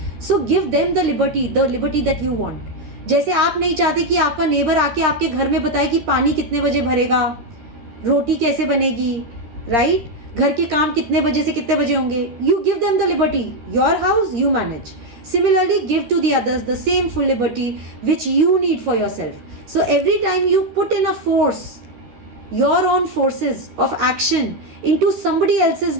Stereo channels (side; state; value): left; late; 13 ms